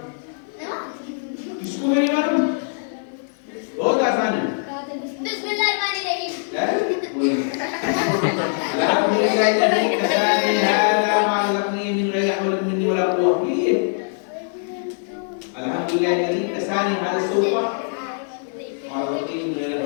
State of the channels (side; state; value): right; silent; 56 dB below the other